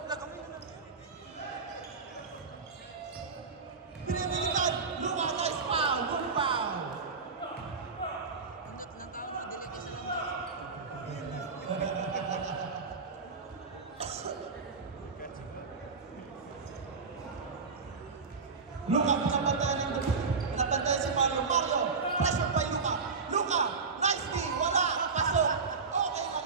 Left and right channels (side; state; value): left; quieter; 4.8 dB